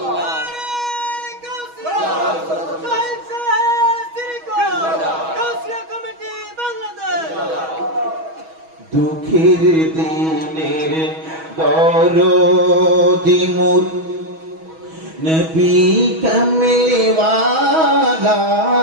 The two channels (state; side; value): late; left; 6.2 ms